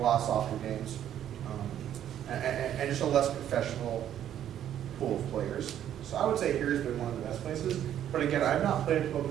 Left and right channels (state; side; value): quieter; left; 10.7 dB